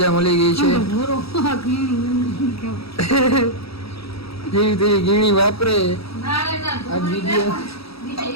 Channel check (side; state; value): right; late; 0.77 ms